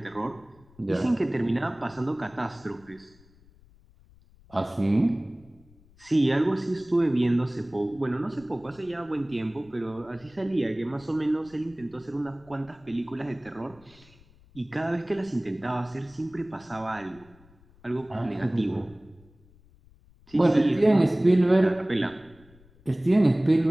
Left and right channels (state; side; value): noise; left; rumble, 27 dB below the sound